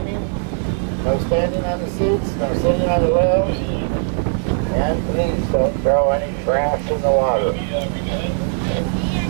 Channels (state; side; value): silent; left; 58 dB below the other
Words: no standing on the seats, no sitting on the rails, and please don't throw any trash in the water.